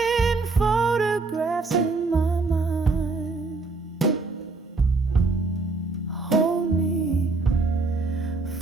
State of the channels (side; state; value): left; quieter; 3.8 dB